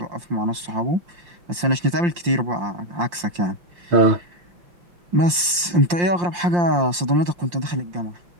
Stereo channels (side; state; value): left; late; 5.7 ms